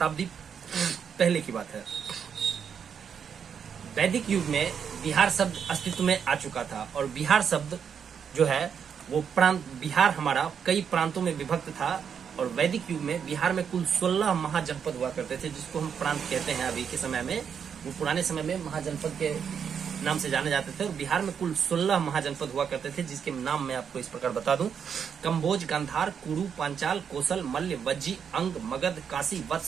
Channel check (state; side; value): quieter; left; 7.3 dB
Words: पहले की बात है। वैदिक युग में बिहार शब्द अस्तित्व में आ चुका था और बिहार शब्द जो है वो प्रांत, बिहार हमारा कई प्रांतों में विभक्त था और वैदिक युग में बिहार में कुल 16 महाजनपद हुआ करते थे, जिसको हम प्रांत कहते हैं। अभी के समय में वो पुराने समय में महाजनपद के नाम से जाने जाते थे और बिहार में कुल 16 महाजनपद हुआ करते थे, जिसके नाम मैं आपको इस प्रकार बता दूं। कंबोज, गांधार, कुरु, पांचाल, कोसल, मल्ल, वज्जी, अंग, मगध, काशी,